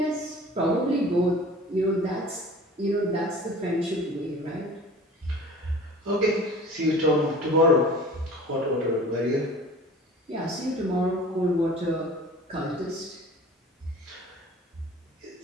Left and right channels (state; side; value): normal; both; correlation 0.43